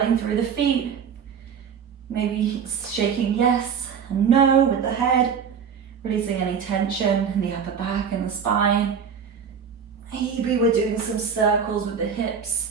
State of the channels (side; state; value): left; quieter; 6.9 dB